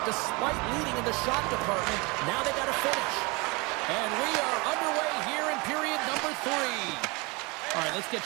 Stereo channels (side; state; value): left; quieter; 27.2 dB